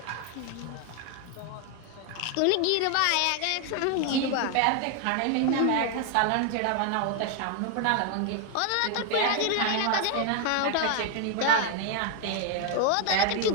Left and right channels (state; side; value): different; both; correlation 0.01